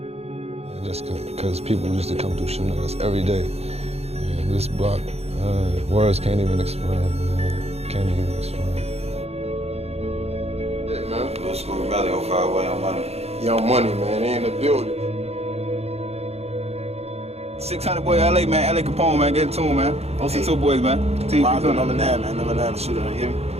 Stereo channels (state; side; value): late; left; 0.30 ms